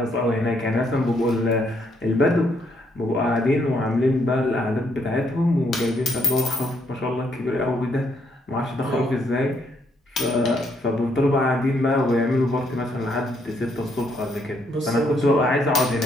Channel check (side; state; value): both; normal; correlation 0.73